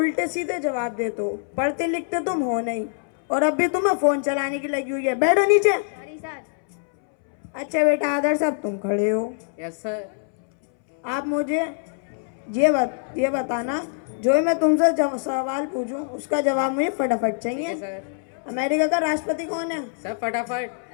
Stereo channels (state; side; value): silent; right; 63 dB below the other